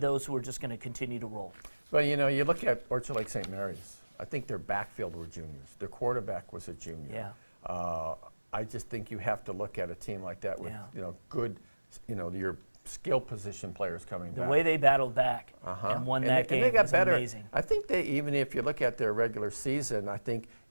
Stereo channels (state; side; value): inverted; both; correlation -1.00